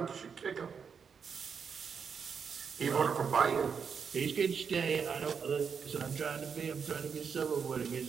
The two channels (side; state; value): left; quieter; 6.4 dB